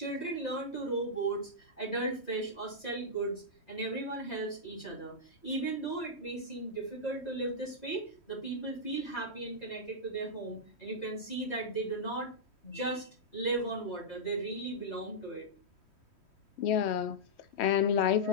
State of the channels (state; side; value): late; right; 3.1 ms